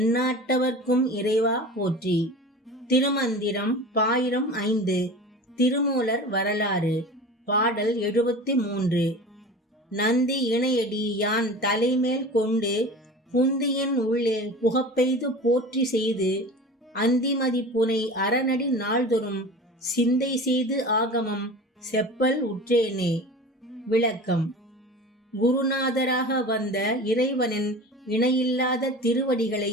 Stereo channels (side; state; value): both; normal; correlation 0.35